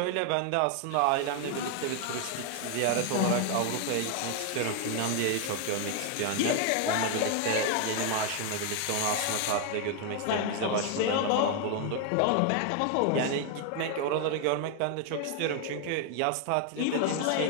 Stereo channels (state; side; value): different; both; correlation 0.01